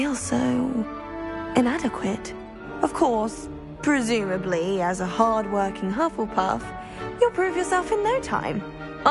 so... inadequate. Of course, presumably, as a hard-working Hufflepuff, you'll prove yourself in no time.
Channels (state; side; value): identical; both; correlation 1.00